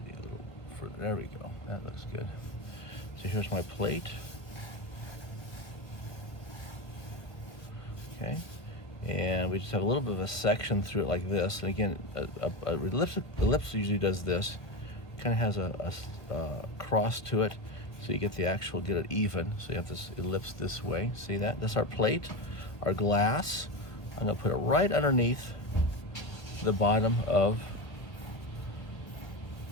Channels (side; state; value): right; late; 1.2 ms